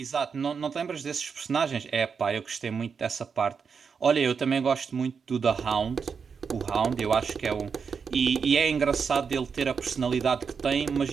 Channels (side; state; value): left; quieter; 6.0 dB